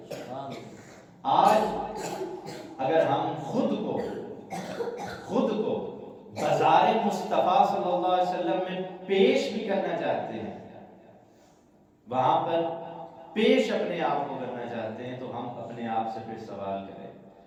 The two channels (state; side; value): identical; both; correlation 1.00